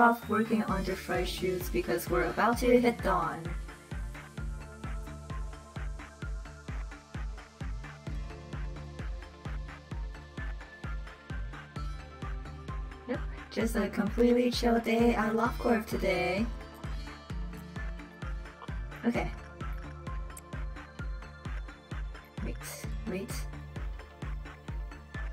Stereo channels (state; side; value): identical; both; correlation 1.00